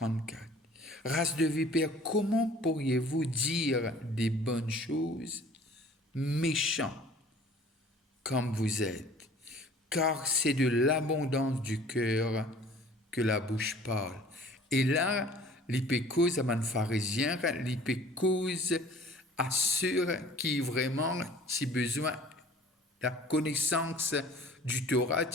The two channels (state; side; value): normal; both; correlation 0.50